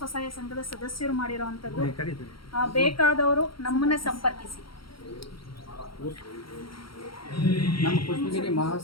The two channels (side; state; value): right; late; 0.74 ms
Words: ಸಂಘದ ಸದಸ್ಯರು ಮಾಡಿರೋ ಅಂಥದ್ದು. ಬೇಕಾದವರು ನಮ್ಮನ್ನೇ ಸಂಪರ್ಕಿಸಿ. ನಮ್ಮ ಪುಷ್ಪಗಿರಿ